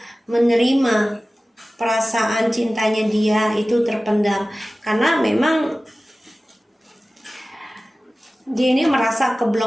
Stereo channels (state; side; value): normal; both; correlation 0.97